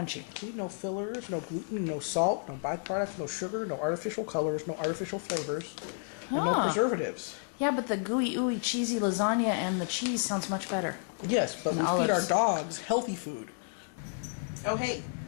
No fillers, no gluten, no salt, no byproducts, no sugar, no artificial colors, no artificial flavors, and no preservatives. Yeah, but the gooey, ooey, cheesy lasagna and the cheese sounds much better. Yes, but we And feed our olives. dogs healthy food. Oh, hey,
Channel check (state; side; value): silent; right; 57 dB below the other